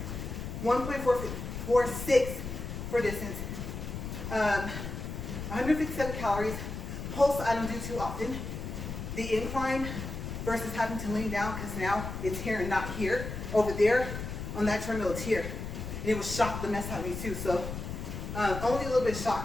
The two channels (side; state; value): left; noise; rumble, 6 dB below the sound